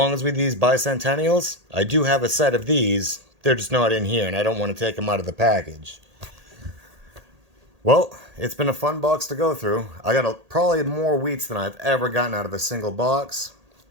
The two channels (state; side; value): late; left; 1.8 ms